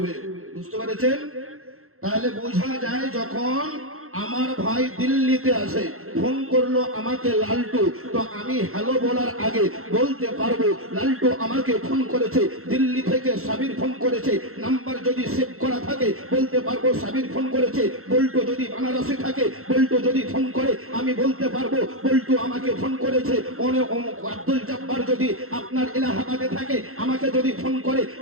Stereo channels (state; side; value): late; left; 0.63 ms